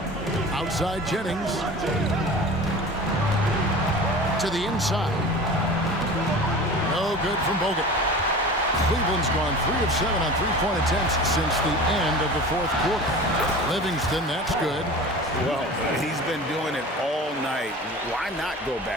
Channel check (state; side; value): normal; both; correlation 0.37